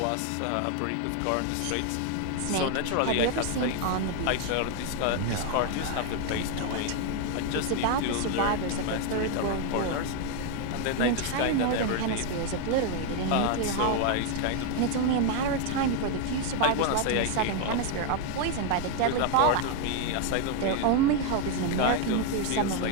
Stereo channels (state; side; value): different; both; correlation 0.01